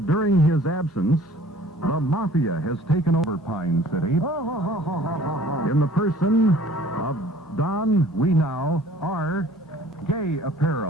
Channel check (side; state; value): both; normal; correlation 0.51